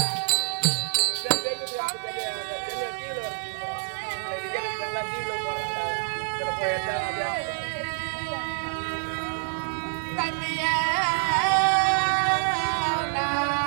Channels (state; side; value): silent; left; digital silence